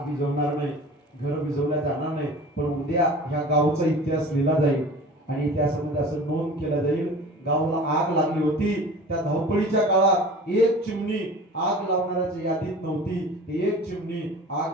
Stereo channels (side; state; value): both; normal; correlation 0.40